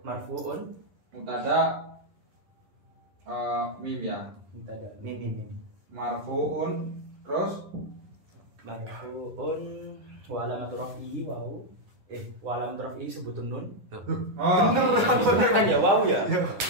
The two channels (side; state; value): left; late; 10 ms